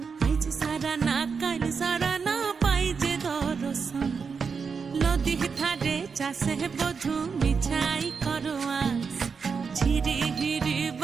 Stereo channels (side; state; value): left; quieter; 5.6 dB